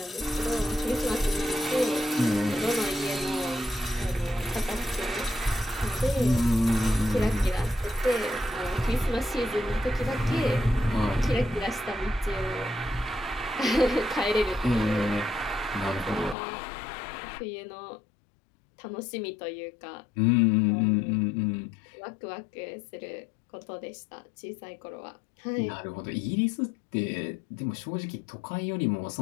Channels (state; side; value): drops out; right; at 16.4 s